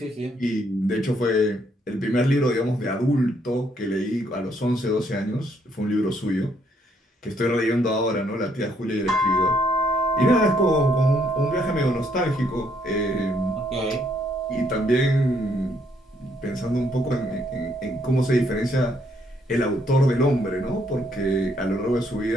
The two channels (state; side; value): normal; both; correlation 0.70